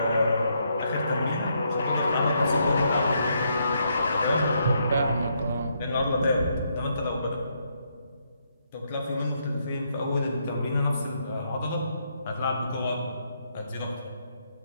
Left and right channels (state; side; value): inverted; both; correlation -0.76